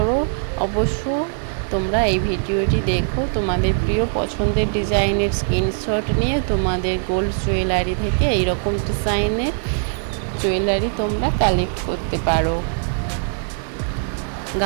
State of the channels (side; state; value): left; silent; 65 dB below the other